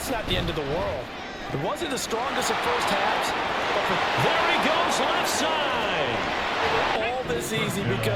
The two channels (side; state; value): both; identical; correlation 1.00